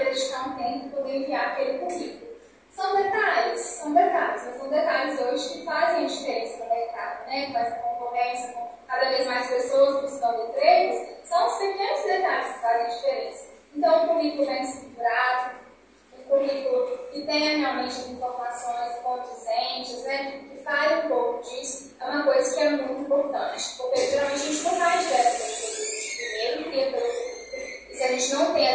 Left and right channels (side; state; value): both; identical; correlation 1.00